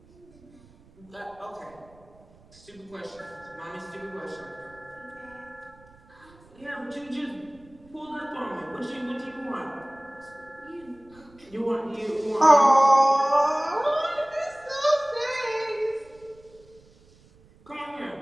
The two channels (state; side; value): noise; right; rumble, 27 dB below the sound